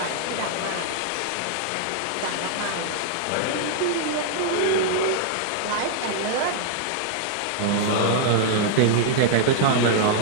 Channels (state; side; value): different; both; correlation -0.01